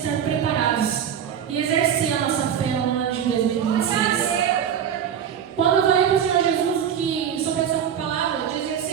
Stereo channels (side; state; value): left; quieter; 8.7 dB